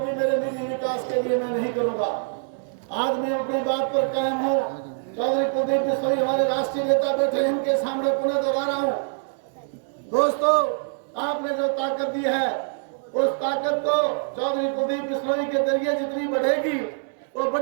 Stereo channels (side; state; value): left; silent; 62 dB below the other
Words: मेरे निजी विकास के लिए मैं नहीं करूंगा। आज मैं अपनी बात पर कायम हूँ। चौधरी कुलदीप बिश्नोई हमारे राष्ट्रीय नेता बैठे, इनके सामने पुनः दोहरा रहा हूँ। दोस्तों, आपने जो ताकत दी है उस ताकत को चौधरी कुलदीप बिश्नोई के जरिए जितनी बढ़ेगी वो